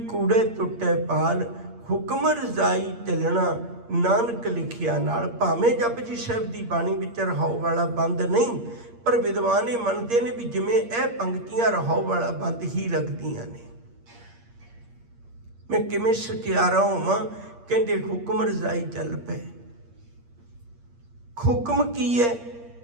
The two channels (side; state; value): left; late; 8.6 ms